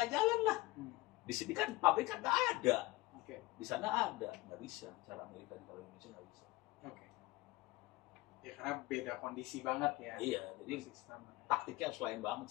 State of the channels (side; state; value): right; quieter; 20.3 dB